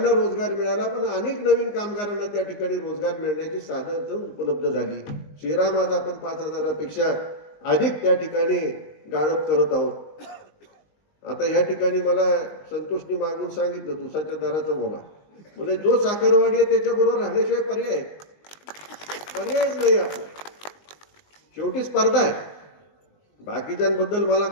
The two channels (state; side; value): late; right; 19 ms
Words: रोजगार मिळाला, पण अनेक नवीन कामगारांना त्या ठिकाणी रोजगार मिळण्याची साधनं उपलब्ध झाली. श्रीराम आज आपण 5 हजारापेक्षा अधिक त्या ठिकाणी गाळप करत आहोत. आता या ठिकाणी मला संतोषनी मागून सांगितलं ऊसाच्या दराचं बोला, म्हणजे जो साखरवाडी आहे त्याच्याबरोबर राहण्याशिवाय पर्यायच नाही. आपण शेवटी स्पर्धा आहे, बाकीच्यांबद्दल मला